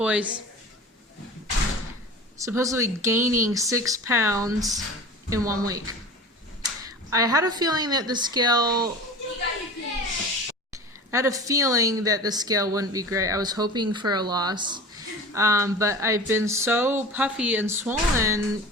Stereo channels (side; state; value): both; normal; correlation 0.36